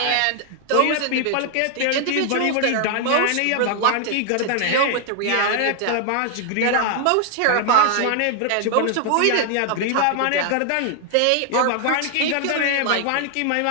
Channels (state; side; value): different; both; correlation 0.00